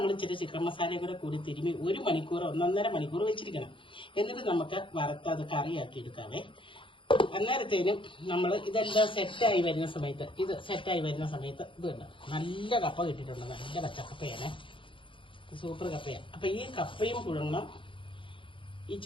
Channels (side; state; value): right; late; 0.25 ms